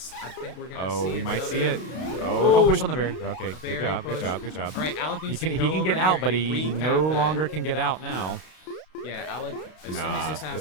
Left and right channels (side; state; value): right; late; 32 ms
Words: I think we're gonna. Oh, see we might see another- it. Oh, don't push on the berry. Okay, berry good job, push. good job, good job. All right, Alec He needs can to he go can over get out, here but and he recap no that. longer can get out now. Yeah, Alec, as soon as Nah, this